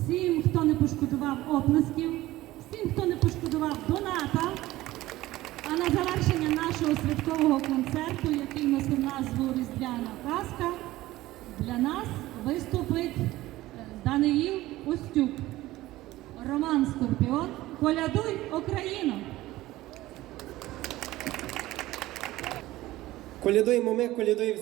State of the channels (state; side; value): quieter; left; 16.9 dB